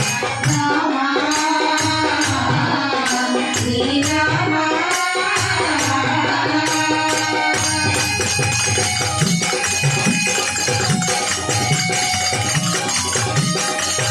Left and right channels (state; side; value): identical; both; correlation 1.00